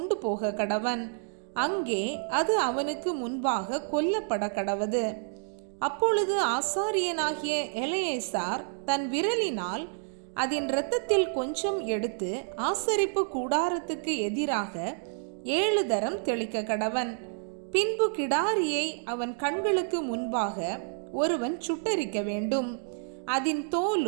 போக கடவன். அங்கே அது அவனுக்கு முன்பாக கொல்லப்பட கடவது. அப்பொழுது ஆசாரியனாகிய எலெயாசார் தன் விரலினால் அதன் இரத்தத்தில் கொஞ்சம் எடுத்து ஆசரிப்பு கூடாரத்துக்கு எதிராக 7 தரம் தெளிக்க கடவன். பின்பு கிடாரியை அவன் கண்களுக்கு முன்பாக ஒருவன் சுட்டரிக்க வேண்டும். அதன்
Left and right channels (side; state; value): left; silent; 58 dB below the other